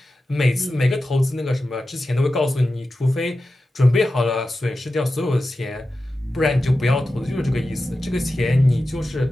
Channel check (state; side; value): normal; both; correlation 0.93